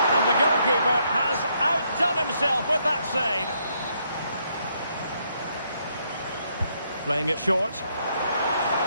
And the goalkeeper has outdone himself with that save. Playing it short.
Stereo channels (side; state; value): both; inverted; correlation -0.74